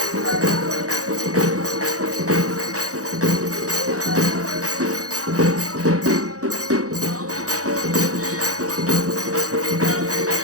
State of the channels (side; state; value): left; late; 0.66 ms